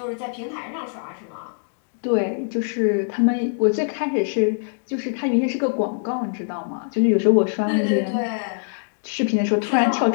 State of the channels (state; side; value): silent; right; digital silence